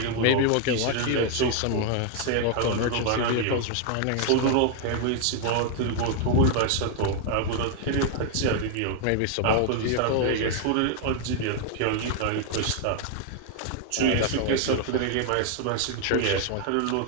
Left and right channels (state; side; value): different; both; correlation 0.00